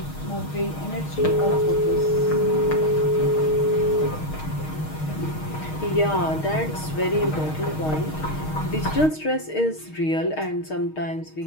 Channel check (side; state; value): right; late; 6.4 ms